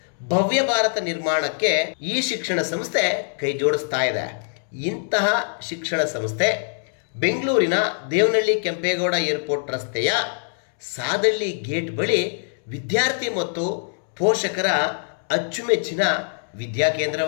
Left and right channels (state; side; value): silent; right; 63 dB below the other